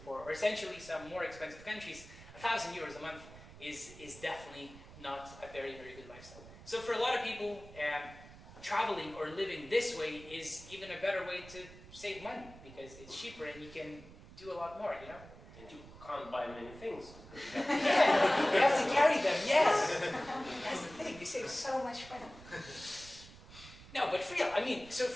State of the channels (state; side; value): noise; right; rumble, 18 dB below the sound